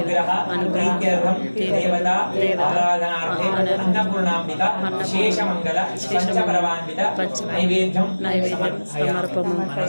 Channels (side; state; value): both; inverted; correlation -1.00